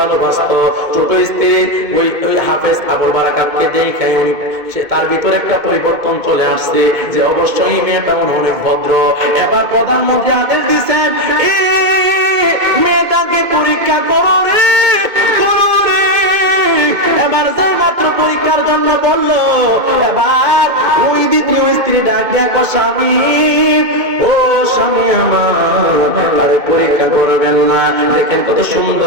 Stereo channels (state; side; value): late; left; 2.1 ms